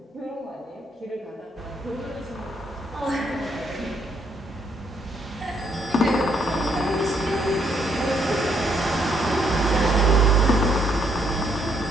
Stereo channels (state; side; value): normal; both; correlation 0.71